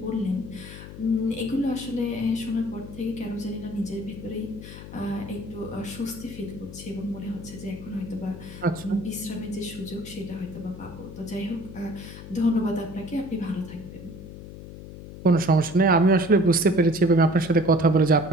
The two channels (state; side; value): noise; left; hum, 13 dB below the sound